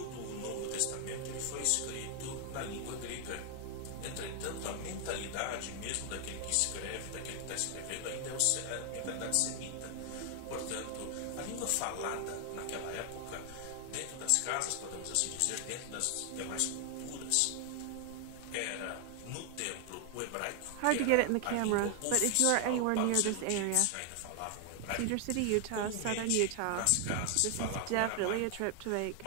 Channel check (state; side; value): different; both; correlation 0.00